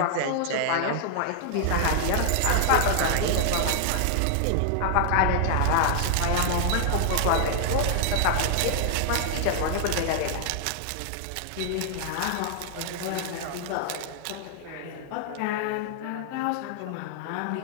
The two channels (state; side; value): different; both; correlation 0.00